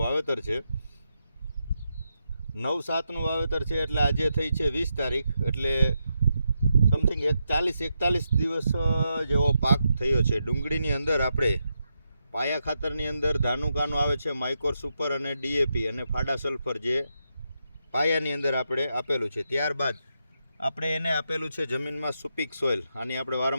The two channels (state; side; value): inverted; both; correlation -0.84